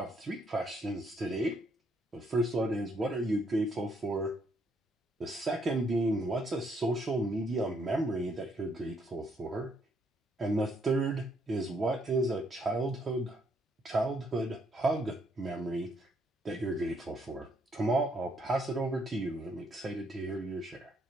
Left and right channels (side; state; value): both; normal; correlation 0.71